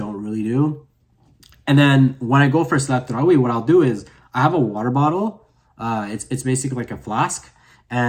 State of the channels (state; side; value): identical; both; correlation 1.00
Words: really do. And then when I go for Salat Tarawih, what I'll do is I have a water bottle. It's basically like a flask,